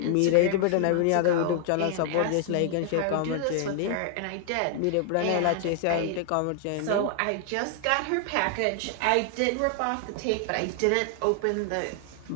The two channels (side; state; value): both; different; correlation 0.00